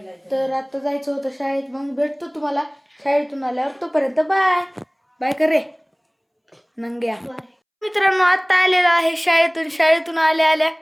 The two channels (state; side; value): identical; both; correlation 1.00